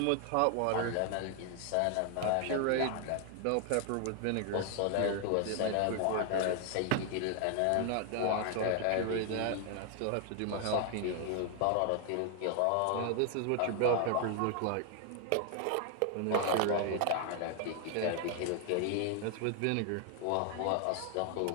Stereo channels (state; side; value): different; both; correlation 0.00